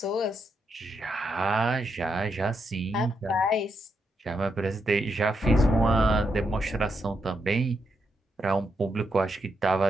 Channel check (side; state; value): both; normal; correlation 0.82